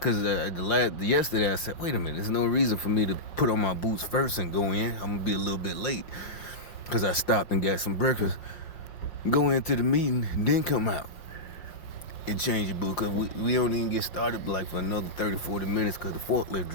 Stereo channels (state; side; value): late; right; 5.2 ms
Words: yesterday I said, wait a minute, there's no reason for me to put on my boots first and go in. I'm going to be a little bit late because I stopped and got some breakfast. Go into the meeting, then come out and change your boots, because we don't even get started like for another 30, 40 minutes because the forklift